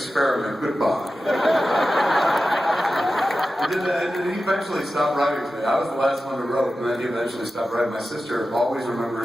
Goodbye. And he eventually stopped writing to me. I was the last one who wrote, and then he eventually stopped writing. My sister always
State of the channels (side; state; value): both; normal; correlation 0.93